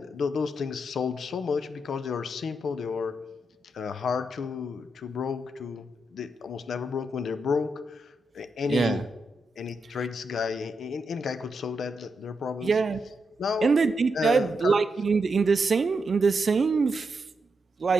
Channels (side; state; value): both; normal; correlation 0.84